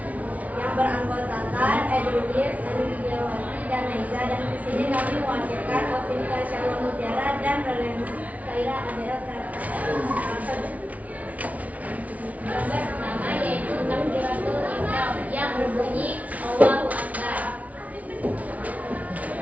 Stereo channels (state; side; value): late; left; 0.070 ms